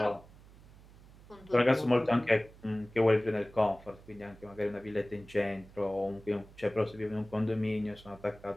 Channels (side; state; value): right; noise; hum, 22 dB below the sound